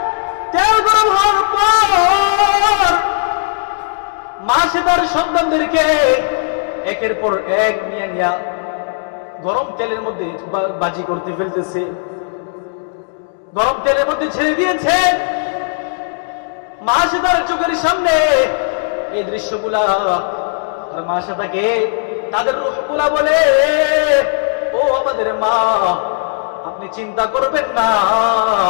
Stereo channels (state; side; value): silent; right; 68 dB below the other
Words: তেল গরম হওয়ার পর মাসে তার সন্তানদেরকে একের পর এক নিয়ে নিয়ে গরম তেলের মধ্যে বাজি করতে ফেলতেছে, গরম তেলের মধ্যে ছেড়ে দিয়েছে। মাসে তার চোখের সামনে এই দৃশ্যগুলা, আর মাসে তাকে তাদের রূহগুলা বলে, ও আমাদের মা, আপনি চিন্তা করবেন না,